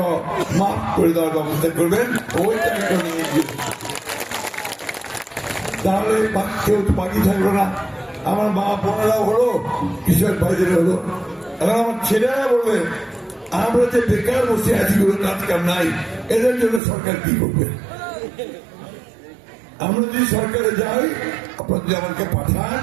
মাফ করে দেওয়ার ব্যবস্থা করবেন, ওই টাকাটা নিয়ে গিয়ে তাহলে কেউ তো বাকি থাকলো না। আমার মা বোনেরাও হলো, কৃষক ভাইদের হলো, এখন আমার ছেলেরা বলবে আমরা যে বেকার বসে আছি, কোনো কাজ কাম নাই, এদের জন্য সরকার কি করবে? আমরা যদি সরকারে যাই, আপনারা যদি আমাকে পাঠান,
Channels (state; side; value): drops out; left; at 16.8 s